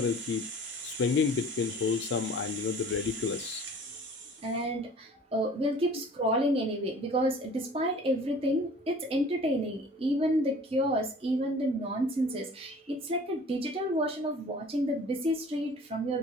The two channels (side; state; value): both; normal; correlation 0.47